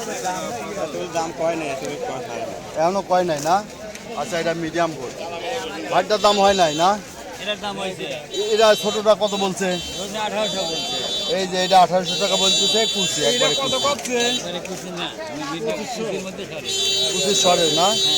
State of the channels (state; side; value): identical; both; correlation 1.00